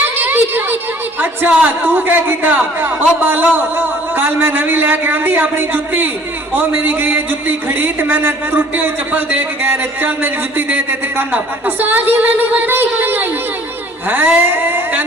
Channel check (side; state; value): both; normal; correlation 0.54